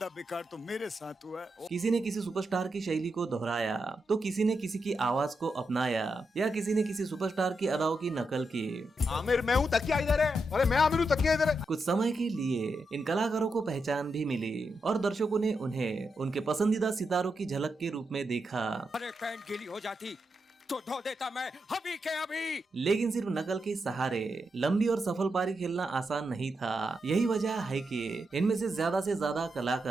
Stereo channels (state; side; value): normal; both; correlation 0.85